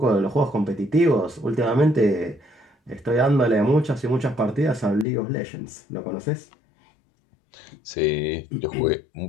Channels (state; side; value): drops out; right; at 5.1 s